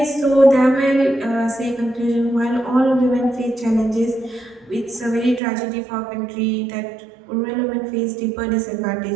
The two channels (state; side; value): drops out; left; at 5.4 s